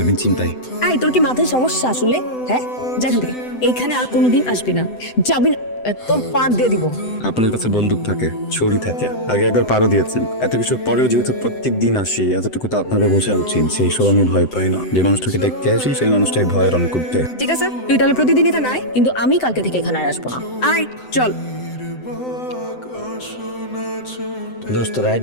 চিন্তাই। আই তোর কি মাথায় সমস্যা আসলে? হ্যাঁ যা এখান থেকে, এইখানে আর কোনোদিন আসবি না, যাবি না, তোর পার দিয়ে দিব। আপনার কাছে বন্দুক থাকে, ছুরি থাকে, আগে একবার পারও দিয়েছেন, এত কিছু পরেও যেহেতু প্রত্যেক দিন আসি, এতটুকু তো আপনাকে বোঝা উচিত সেই সব আমি ভয় পাই না। যে মানুষটাকে দেখতে আসি সেই মানুষটাই ভয় রং করতে। ঠিক আছে তুই তাহলে প্রতিদিন এখানে আয়, কিন্তু আমি কালকে থেকে এখানে আর আসবো না। আয় চল। দোস্ত রাত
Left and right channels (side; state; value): right; late; 7.9 ms